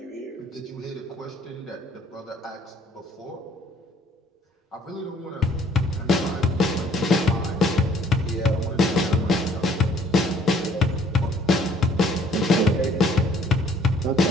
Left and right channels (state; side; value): normal; both; correlation 0.60